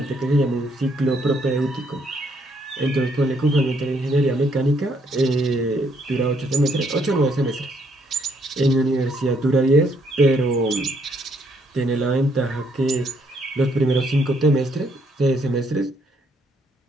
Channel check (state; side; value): normal; both; correlation 0.71